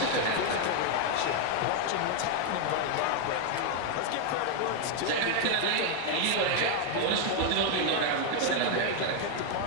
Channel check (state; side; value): different; both; correlation 0.00